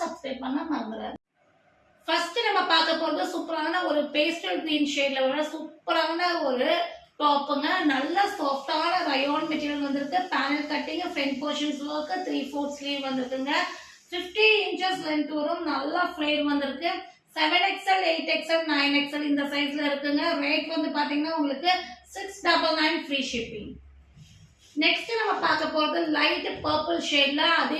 சப்ஸ்கிரைப் பண்ண மறந்துடாதீங்க. ஃபர்ஸ்ட் நம்ம பார்க்க போறது சூப்பரான ஒரு பேஸ்டல் கிரீன் ஷேட்ல வர சூப்பரான ஒரு டாப்புங்க. நல்ல சாஃப்டான ரயோன் மெட்டீரியல் வந்திருக்கு. Panel cutting, front portions work, 3/4 sleeve வந்திருக்குங்க. 50 இன்ச்சஸ் லென்த் வரும். நல்ல ஃப்ளேர் வந்திருக்கு. 7XL, 8XL, 9XL இந்த சைஸ்ல இருக்குங்க. ரேட் வந்து பாத்தீங்கன்னா உங்களுக்கு 699 ஃப்ரீ ஷிப்பிங். நெக்ஸ்ட் நம்ம பார்க்க போறது லைட் பர்பிள் ஷேட்ல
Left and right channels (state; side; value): identical; both; correlation 1.00